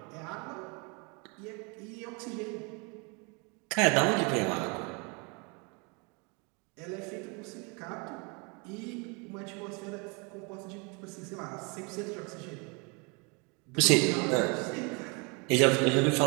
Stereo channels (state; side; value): quieter; left; 31.6 dB